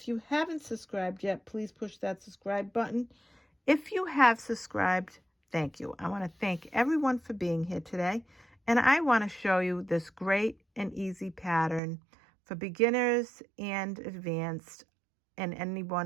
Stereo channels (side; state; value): left; drops out; at 11.8 s